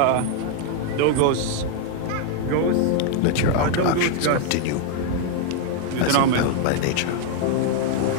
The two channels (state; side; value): different; both; correlation 0.00